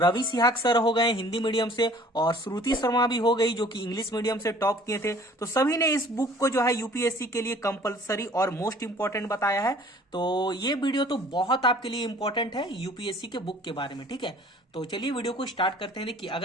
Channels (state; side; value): normal; both; correlation 0.52